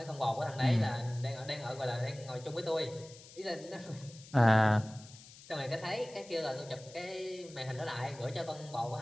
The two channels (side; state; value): left; noise; hiss, 19 dB below the sound